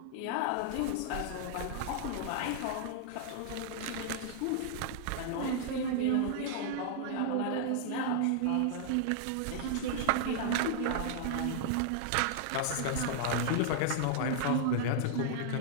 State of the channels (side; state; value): both; different; correlation -0.01